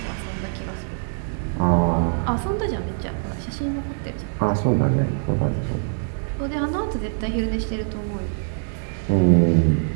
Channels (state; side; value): silent; left; digital silence